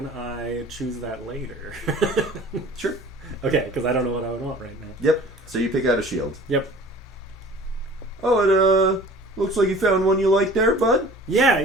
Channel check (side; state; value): both; normal; correlation 0.46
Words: I choose that later? Sure. Okay, because I don't know what I would want right now. Yep. So you pick out a shield. Yep. Oh, it looks like you found one you like there, bud.